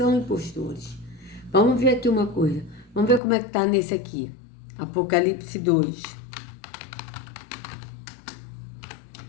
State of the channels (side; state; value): right; drops out; at 3.2 s